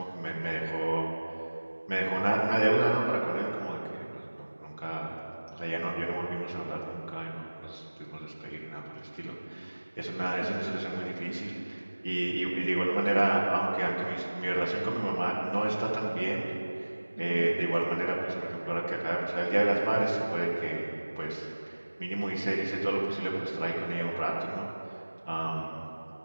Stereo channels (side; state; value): both; inverted; correlation -1.00